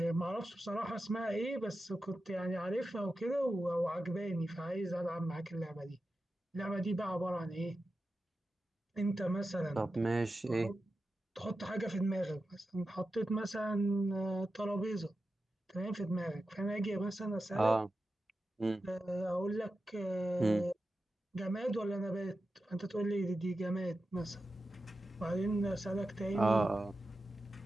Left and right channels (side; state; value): both; normal; correlation 0.92